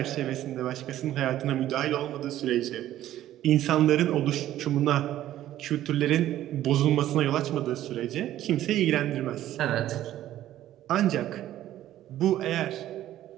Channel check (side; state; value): left; quieter; 13.1 dB